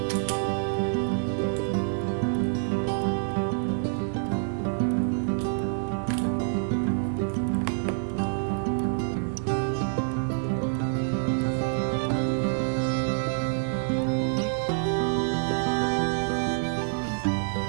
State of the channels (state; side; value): silent; left; digital silence